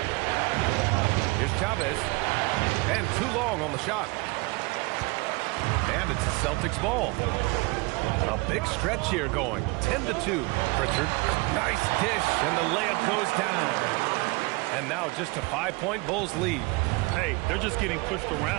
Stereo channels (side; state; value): left; quieter; 26.1 dB